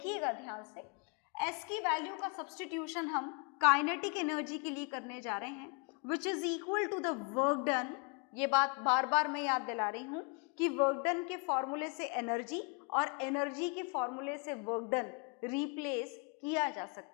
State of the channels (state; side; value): quieter; right; 34.2 dB